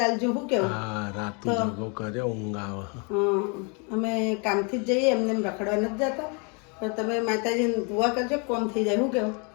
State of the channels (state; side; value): quieter; right; 34.5 dB